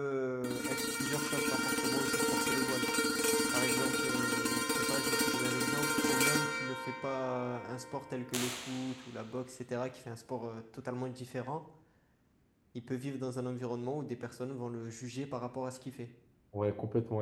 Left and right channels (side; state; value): both; identical; correlation 1.00